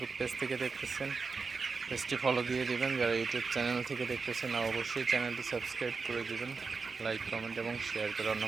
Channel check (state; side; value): quieter; left; 4.7 dB